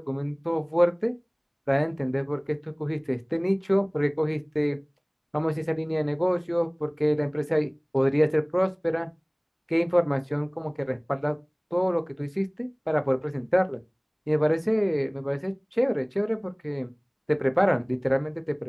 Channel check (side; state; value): both; identical; correlation 1.00